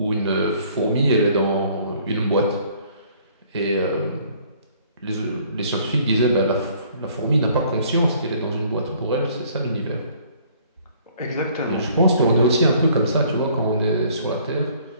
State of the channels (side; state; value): both; inverted; correlation -0.58